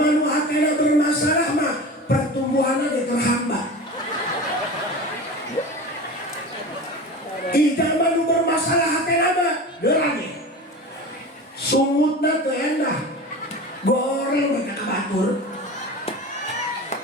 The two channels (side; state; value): both; normal; correlation 0.32